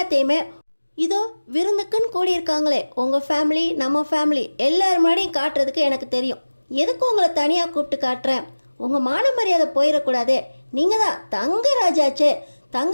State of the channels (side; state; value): both; inverted; correlation -1.00